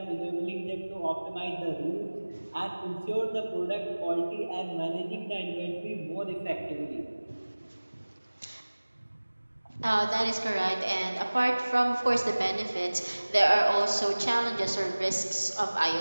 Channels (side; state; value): both; inverted; correlation -1.00